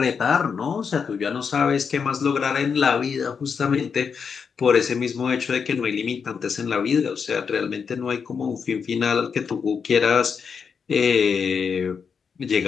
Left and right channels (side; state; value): right; quieter; 6.2 dB